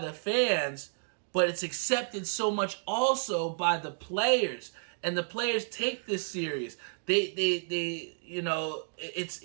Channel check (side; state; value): left; silent; digital silence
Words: fans, but it's accepted so much also by the players, and the players take this serious. They